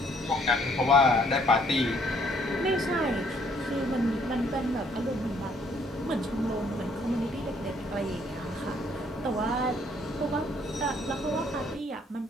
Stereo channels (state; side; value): normal; both; correlation 0.65